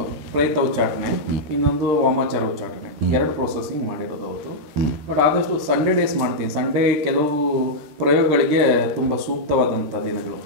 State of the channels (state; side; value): late; left; 13 ms